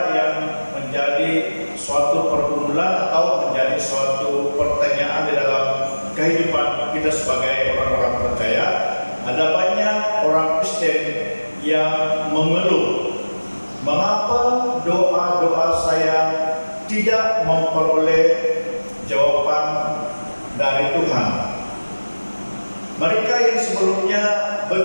yang menjadi suatu pergumulan atau menjadi suatu pertanyaan di dalam kehidupan kita sebagai orang-orang percaya. Ada banyak orang Kristen yang mengeluh, mengapa doa-doa saya tidak memperoleh jawaban dari Tuhan. Mereka yang sebelumnya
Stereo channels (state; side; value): inverted; both; correlation -1.00